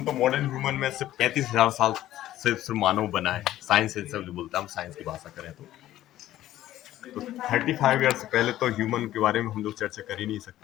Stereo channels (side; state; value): right; quieter; 13.8 dB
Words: तो मॉडर्न ह्यूमन में सिर्फ 35,000 साल से सिर्फ मानव बना है। साइंस से सब जो बोलता है, हम साइंस की भाषा करें तो 35 ईयर्स पहले तो ह्यूमन के बारे में हम लोग चर्चा कर ही नहीं